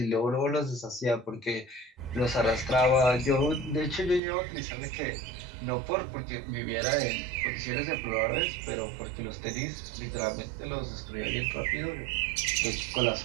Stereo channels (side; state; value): left; drops out; at 4.2 s